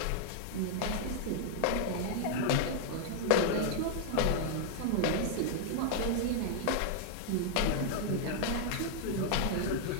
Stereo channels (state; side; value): different; both; correlation 0.00